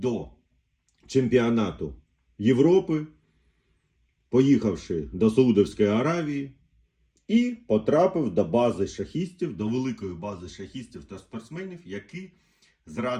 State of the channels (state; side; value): identical; both; correlation 1.00